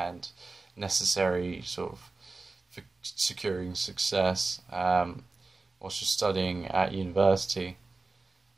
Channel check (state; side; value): quieter; left; 3.6 dB